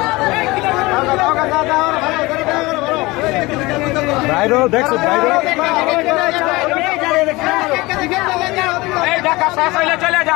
বাইরে দেখছো বাইরে এই ঢাকা শেষ হইলে চলে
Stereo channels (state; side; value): quieter; right; 21.9 dB